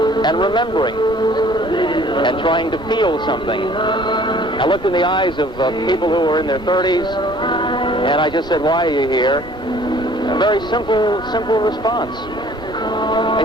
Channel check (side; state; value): both; normal; correlation 0.54